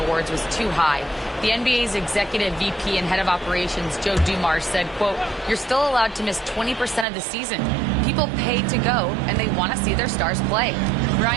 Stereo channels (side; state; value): left; drops out; at 7.1 s